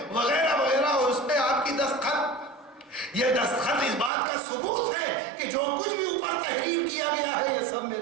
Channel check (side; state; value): left; drops out; at 4.1 s